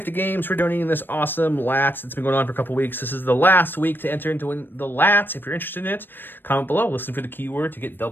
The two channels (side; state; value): right; late; 0.095 ms